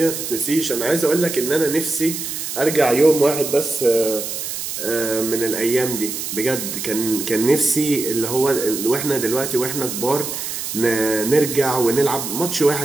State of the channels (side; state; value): right; noise; hiss, 5 dB below the sound